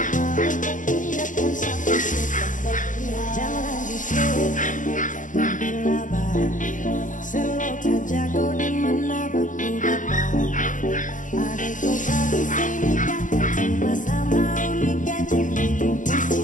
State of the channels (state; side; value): late; right; 0.37 ms